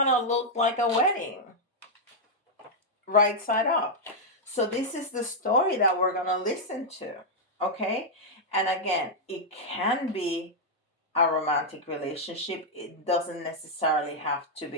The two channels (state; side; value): normal; both; correlation -0.04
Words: of looked like a wedding, right side up. So this is the story that we're going to listen to, okay? And again, it can be a romantic relationship. It doesn't necessarily have to